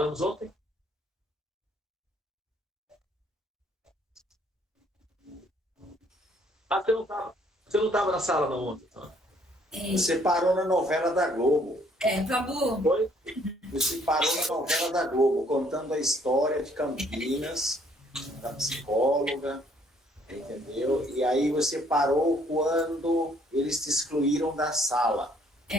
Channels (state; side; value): normal; both; correlation 0.64